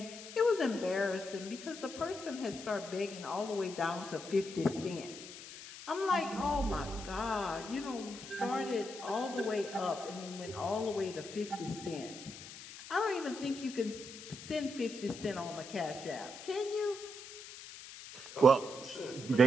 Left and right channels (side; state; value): left; noise; hiss, 13 dB below the sound